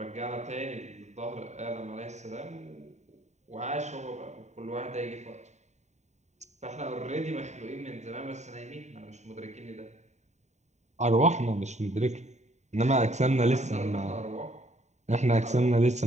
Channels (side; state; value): left; late; 0.34 ms